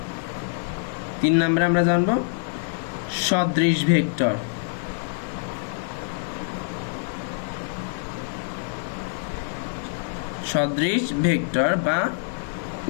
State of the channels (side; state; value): right; silent; digital silence